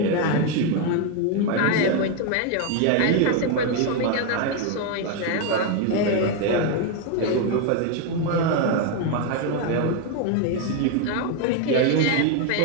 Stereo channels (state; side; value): different; both; correlation 0.01